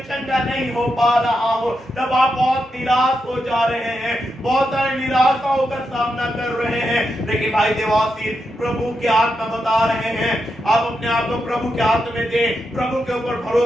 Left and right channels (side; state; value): both; normal; correlation 0.85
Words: चंगा नहीं हो पा रहा हूं, तब आप बहुत निराश हो जा रहे हैं, बहुत सारे निराशाओं का सामना कर रहे हैं। लेकिन भाई देवाशीष, प्रभु के आत्मा बता रहे हैं, आप अपने आप को प्रभु के हाथ में दें, प्रभु के ऊपर